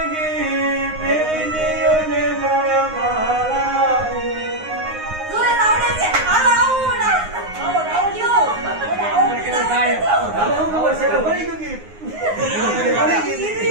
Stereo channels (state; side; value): late; left; 9.6 ms